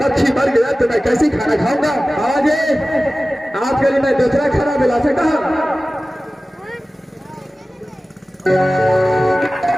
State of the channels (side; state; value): both; normal; correlation 0.96